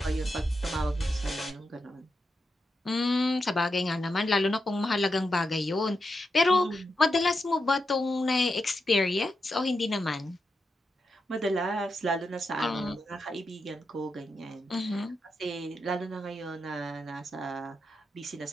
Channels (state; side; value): normal; both; correlation 0.87